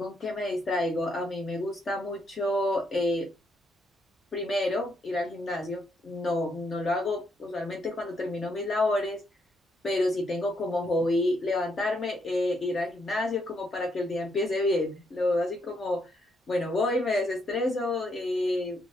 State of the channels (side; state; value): both; normal; correlation 0.76